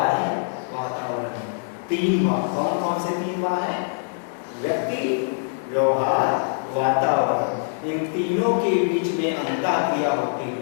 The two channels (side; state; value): right; silent; digital silence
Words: है, वातावरण है। तीन बात, कौन कौन से तीन बात है? व्यक्ति, व्यवहार, वातावरण। इन तीनों के बीच में अंतःक्रिया होती